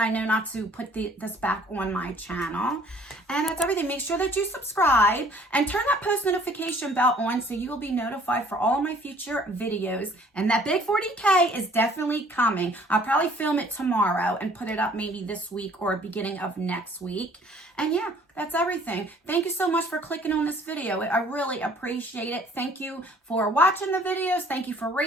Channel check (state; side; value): normal; both; correlation 0.56